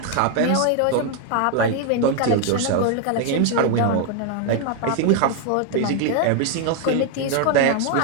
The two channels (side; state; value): both; different; correlation 0.01